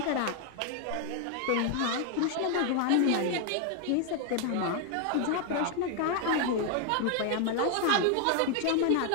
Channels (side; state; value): both; different; correlation 0.00